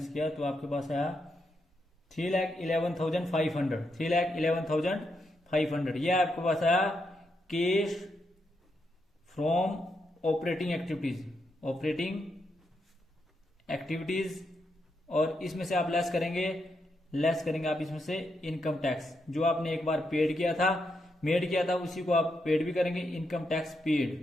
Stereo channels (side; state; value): both; normal; correlation 0.82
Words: किया तो आपके पास आया 3,11,500। ये आपके पास आया कैश फ्रॉम ऑपरेटिंग एक्टिविटीज। और इसमें से आप लेस करेंगे आप इसमें से इनकम टैक्स जो आपने एक बार मेड किया था उसी को आप पेड भी करेंगे, इनकम टैक्स